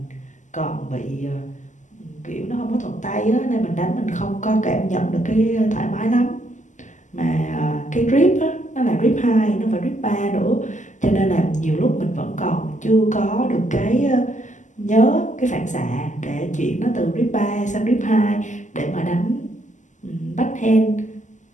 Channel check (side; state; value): right; late; 0.36 ms